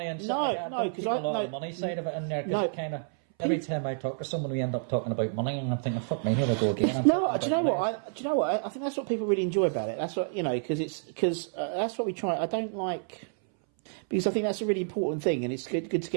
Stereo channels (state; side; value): silent; left; 58 dB below the other